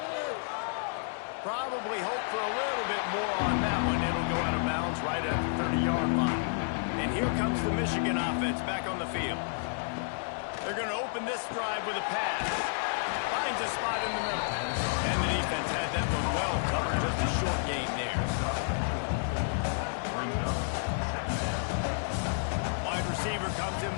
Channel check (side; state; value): right; silent; digital silence